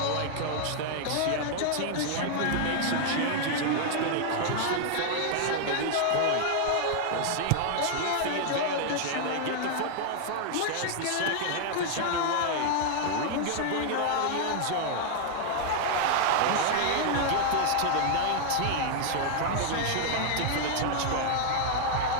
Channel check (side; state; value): both; different; correlation 0.00